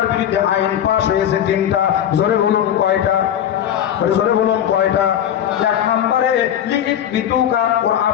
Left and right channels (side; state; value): right; quieter; 10.2 dB